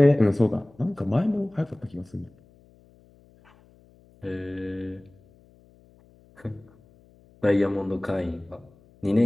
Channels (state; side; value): noise; left; hum, 29 dB below the sound